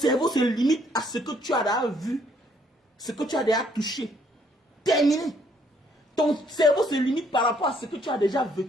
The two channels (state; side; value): normal; both; correlation 0.67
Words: se limite à ce que tu as déjà vu, ce que tu as déjà touché. Terminé. Ton cerveau se limite par rapport à ce que tu as déjà